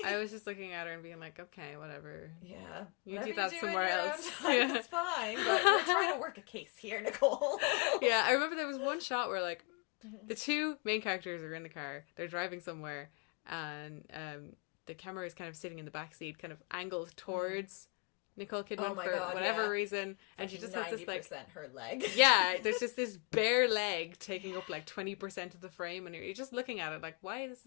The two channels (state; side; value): quieter; right; 33.7 dB